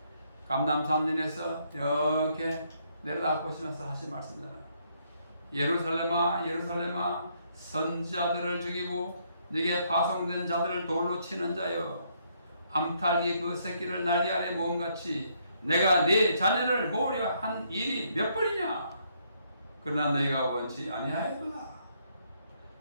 감람산전에서 이렇게 내려다 보시면서 하신 말씀입니다. 예루살렘아 예루살렘아 선지자들을 죽이고 네게 파송된 자들을 돌로 치는 자여, 암탉이 그 새끼를 날개 아래 모음같이 내가 네 자녀를 모으려 한 일이 몇 번이냐. 그러나 너희가 원치 아니하였구나.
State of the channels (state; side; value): inverted; both; correlation -0.71